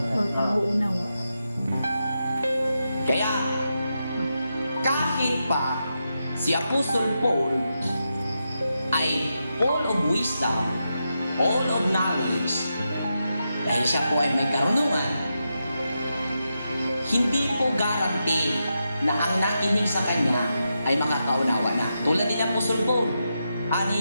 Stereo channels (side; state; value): both; inverted; correlation -0.87